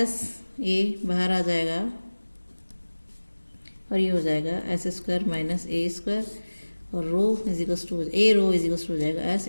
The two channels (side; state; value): both; inverted; correlation -1.00